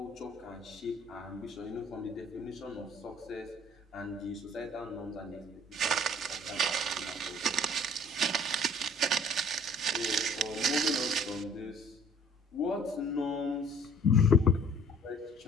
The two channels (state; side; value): normal; both; correlation 0.53